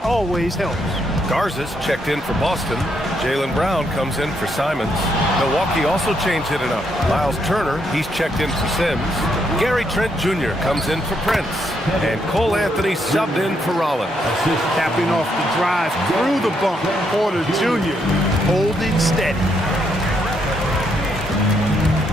always helps. Garza's checked in for Boston. Jaylen Brown comes in for Simons. Milwaukee also changed it up. Miles Turner, he's checked in for Sims. Gary Trent Jr. comes in for Prince. And Cole Anthony subbed in for Rollins. Tapping off the drive through the bump. Porter Jr. holding steady.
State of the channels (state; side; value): normal; both; correlation 0.76